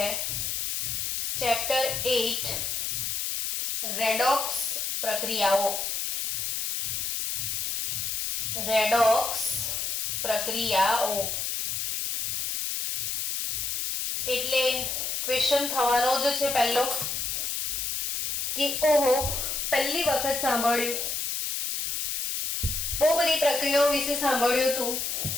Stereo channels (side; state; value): left; noise; hiss, 1 dB below the sound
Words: ચેપ્ટર 8 રેડોક્સ પ્રક્રિયાઓ। રેડોક્સ પ્રક્રિયાઓ એટલે ક્વેશ્ચન થવાનો જ છે પહેલો કે ઓહો પહેલી વખત સાંભળ્યું, બહુ બધી પ્રક્રિયાઓ વિશે સાંભળ્યું તું,